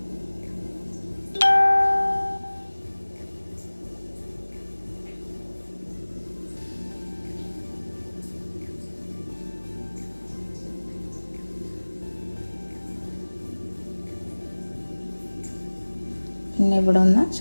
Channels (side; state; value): both; inverted; correlation -1.00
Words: പിന്നെ ഇവിടെ ഒന്ന്